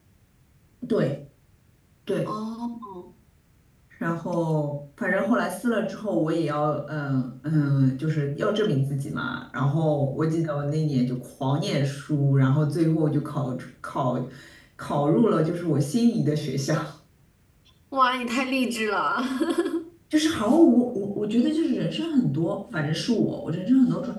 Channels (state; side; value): identical; both; correlation 1.00